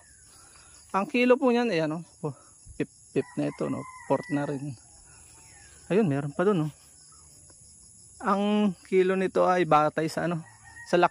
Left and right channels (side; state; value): both; identical; correlation 1.00